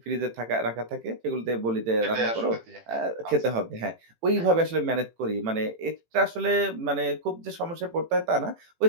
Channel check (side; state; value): left; late; 18 ms